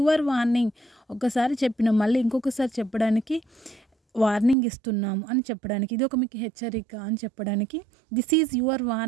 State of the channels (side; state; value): left; drops out; at 4.5 s